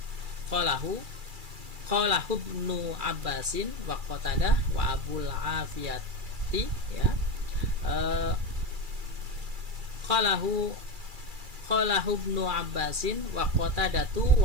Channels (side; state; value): left; late; 2.3 ms